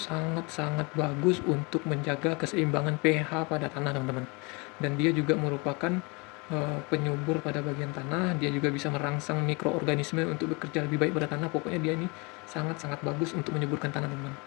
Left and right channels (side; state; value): right; quieter; 28.9 dB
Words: bagus untuk menjaga keseimbangan pH pada tanah teman-teman. Dan dia juga merupakan penyubur pada bagian tanah. Dia juga bisa merangsang mikroorganisme untuk bekerja lebih baik pada tanah. Pokoknya dia ini sangat-sangat bagus untuk menyuburkan tanah teman-teman.